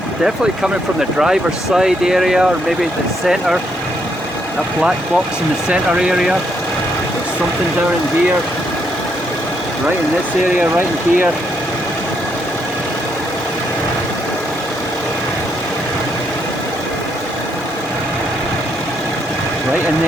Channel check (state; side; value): normal; both; correlation 0.75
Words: Definitely coming from the driver's side area, or maybe the centre, that black box in the centre area. There's something down in here, right in this area, right in here. Right in